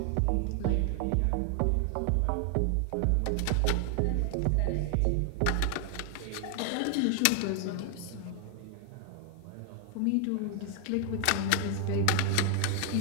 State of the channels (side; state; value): both; different; correlation 0.00